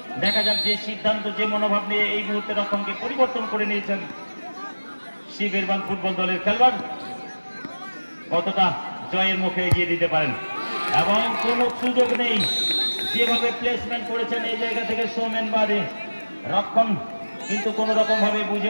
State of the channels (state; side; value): inverted; both; correlation -1.00